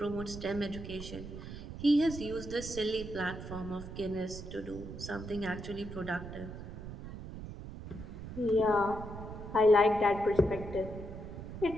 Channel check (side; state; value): right; noise; rumble, 10 dB below the sound